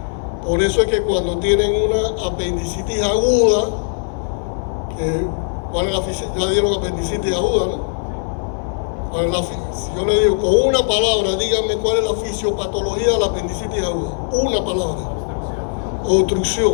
Por eso es que cuando tienen una apendicitis aguda, ¿cuál es la fisiopatología? Ya dieron apendicitis aguda, ¿no? Si yo le digo con una palabra, díganme cuál es la fisiopatología de la apendicitis aguda. Una palabra. Obstrucción.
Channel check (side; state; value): right; silent; 66 dB below the other